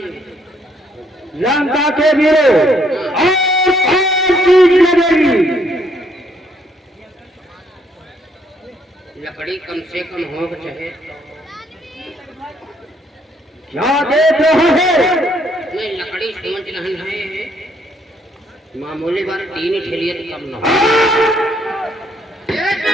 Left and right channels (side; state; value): both; normal; correlation 0.69